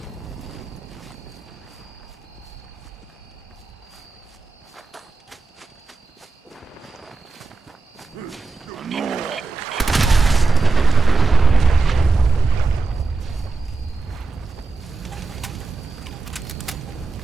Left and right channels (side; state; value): left; quieter; 3.9 dB